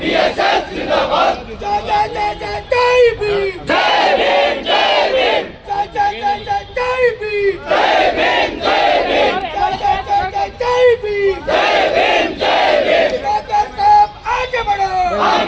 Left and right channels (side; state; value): both; identical; correlation 1.00